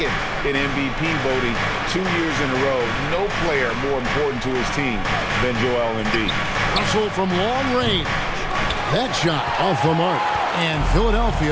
in MVP voting 2 years in a row, no player more important to his team than Joel Embiid. Russell from long range. That shot off the mark. And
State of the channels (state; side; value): identical; both; correlation 1.00